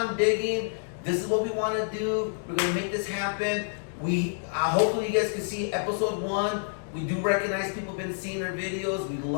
digging. This is what we want to do. We're going to make this happen. Hopefully you guys can see episode 1. We do recognize people have been seeing our videos. We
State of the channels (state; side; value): silent; right; digital silence